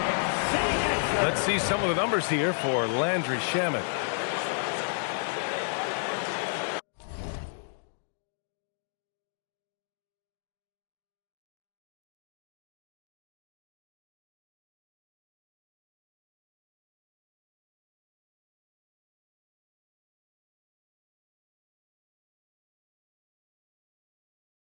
Let's see some of the numbers here for Landry Shamet.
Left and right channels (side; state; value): right; silent; digital silence